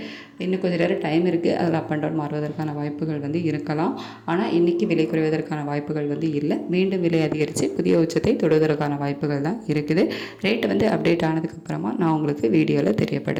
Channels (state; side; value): identical; both; correlation 1.00